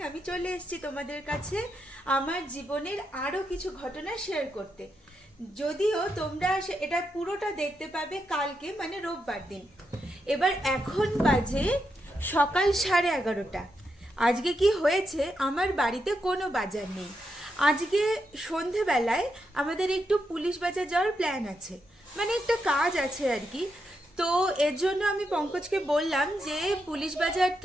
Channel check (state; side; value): normal; both; correlation 0.83